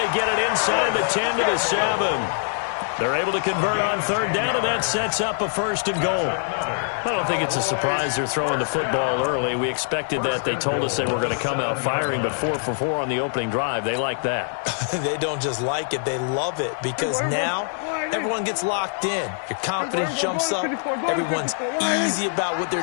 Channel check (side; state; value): right; silent; digital silence